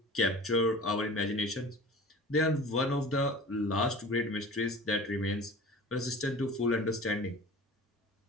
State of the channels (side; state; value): both; normal; correlation 0.40